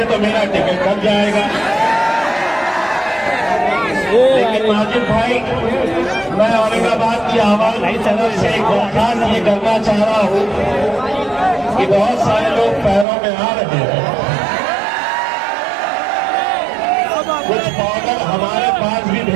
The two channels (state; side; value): drops out; left; at 13.1 s